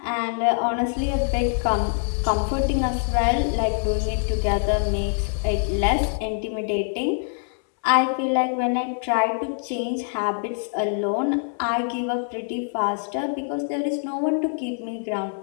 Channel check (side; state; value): right; silent; digital silence